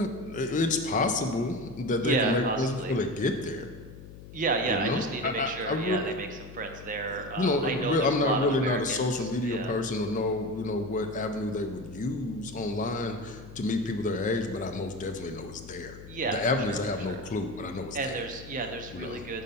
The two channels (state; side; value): noise; left; hum, 15 dB below the sound